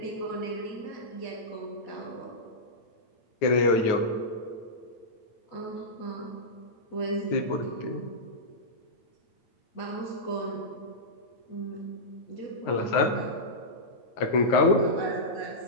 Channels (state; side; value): late; right; 9.4 ms